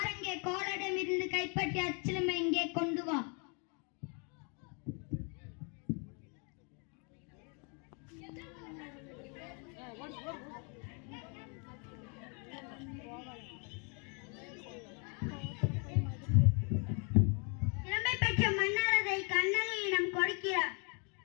இங்கே கோலிடம் இருந்து கைப்பற்றி அச்சிலம்பை இங்கே கொண்டு வா. சிலம்பை பெற்ற மன்னர் அதை கண்ணகியிடம் கொடுக்கிறார்.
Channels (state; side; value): quieter; right; 36.1 dB